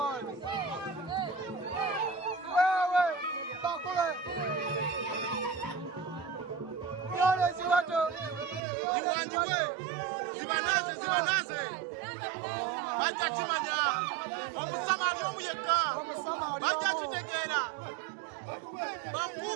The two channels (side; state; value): left; drops out; at 8.6 s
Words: Wewe bakule. Yole ziwato. Ziwanjiwe. Zibanaze. Bajja kimanya. Omusamali omuyeka. Bajja kitegera.